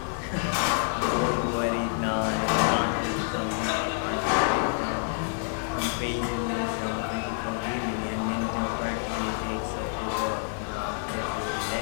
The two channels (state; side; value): silent; right; 59 dB below the other